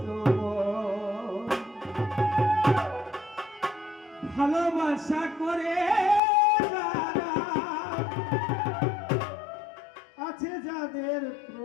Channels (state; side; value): drops out; right; at 6.2 s